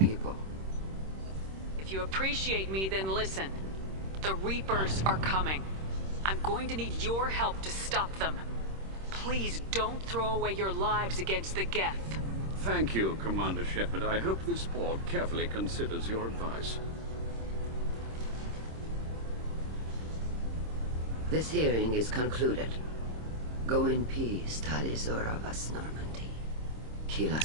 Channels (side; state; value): left; late; 26 ms